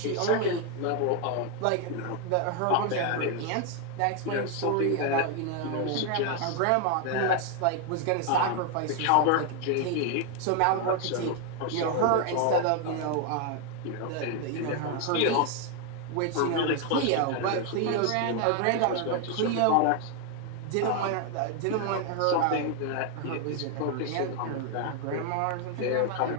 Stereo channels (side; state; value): both; different; correlation 0.01